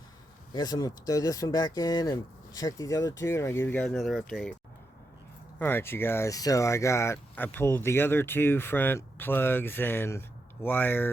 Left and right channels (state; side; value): normal; both; correlation 0.85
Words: I guess I'm gonna throw this one back in and check these other two, and I'll give you guys another update. Alright, you guys, so I pulled the other two front plugs and